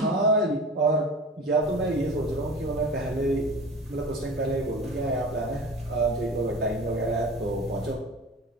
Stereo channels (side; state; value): both; normal; correlation 0.36